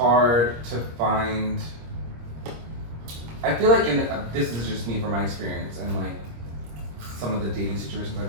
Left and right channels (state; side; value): late; left; 26 ms